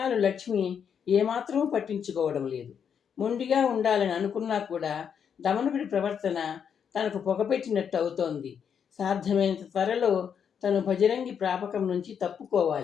లక్ష్మి ఏమాత్రం పట్టించుకోవడం లేదు. మొండిగా ఉండాలని అనుకున్నా కూడా దమనకుడి ప్రవర్తన తనకు పొగపెట్టినట్టు అవుతోంది. సాధ్యమైనంత త్వరలో తను భజరంగి ప్రాపకం నుంచి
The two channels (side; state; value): right; quieter; 7.6 dB